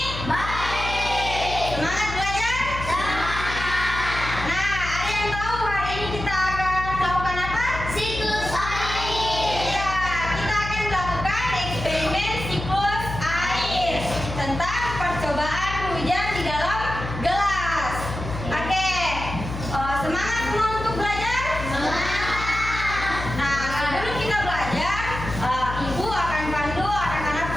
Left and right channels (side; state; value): left; noise; hum, 7 dB below the sound